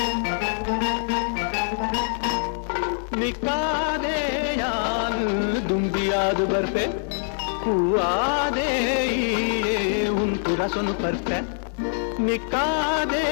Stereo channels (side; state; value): right; silent; digital silence